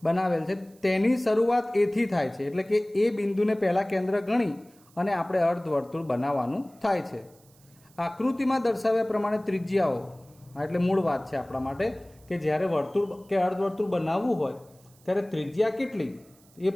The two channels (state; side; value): noise; right; hiss, 29 dB below the sound